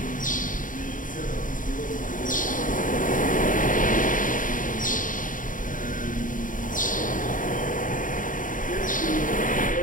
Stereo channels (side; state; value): right; late; 0.39 ms